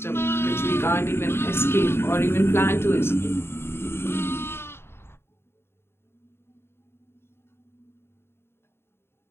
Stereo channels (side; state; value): right; late; 0.12 ms